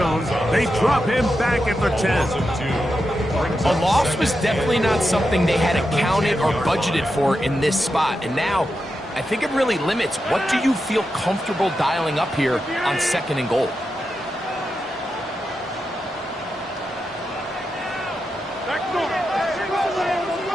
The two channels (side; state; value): both; normal; correlation 0.88